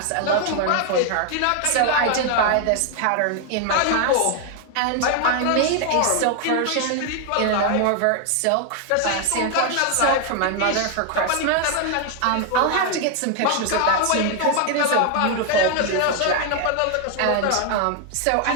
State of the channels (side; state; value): both; different; correlation 0.00